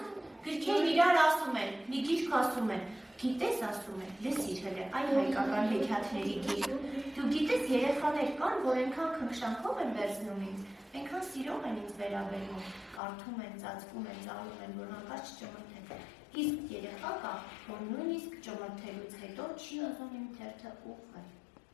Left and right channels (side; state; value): right; drops out; at 13.0 s